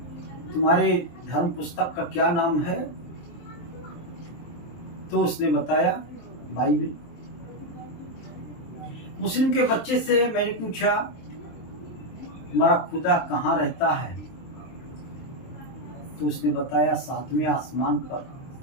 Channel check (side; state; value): right; late; 23 ms